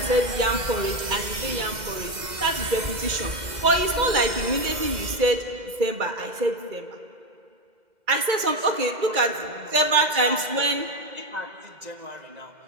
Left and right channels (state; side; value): late; left; 2.0 ms